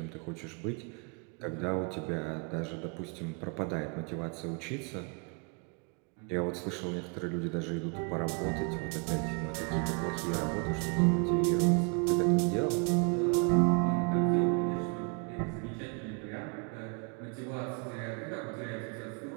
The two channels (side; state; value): left; quieter; 35.4 dB